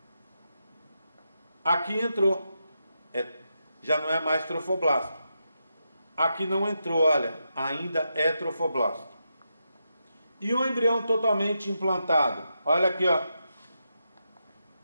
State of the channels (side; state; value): both; inverted; correlation -0.85